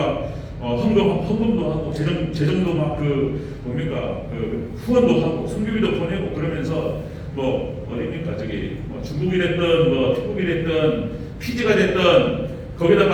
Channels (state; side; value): identical; both; correlation 1.00